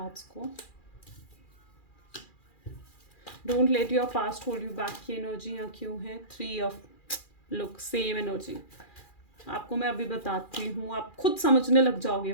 को। Don't let your past hold you back की एनर्जी यहाँ क्यों है? 3 ऑफ, लुक सेम एनर्जी। आपको मैं अभी बताती हूँ, आप खुद समझने लग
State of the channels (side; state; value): right; late; 2.4 ms